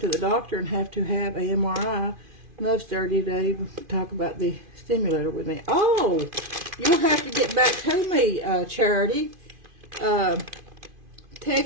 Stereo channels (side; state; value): left; late; 2.5 ms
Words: doctor and have to have a MRI. Love's dirty today to talk about the stimulator with me. Oh, you'll have to get back to me, Charity.